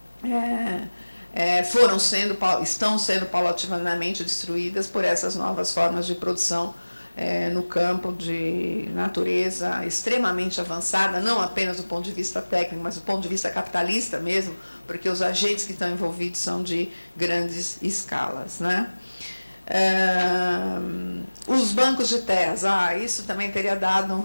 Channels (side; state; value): both; inverted; correlation -1.00